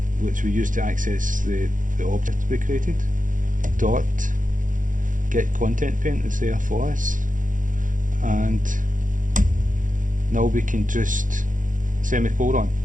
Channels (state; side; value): late; left; 0.38 ms